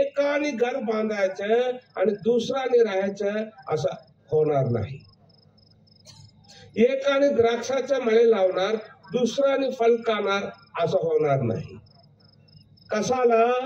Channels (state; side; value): identical; both; correlation 1.00